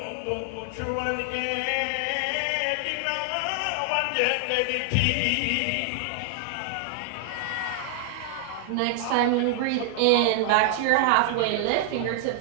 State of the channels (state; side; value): different; both; correlation 0.00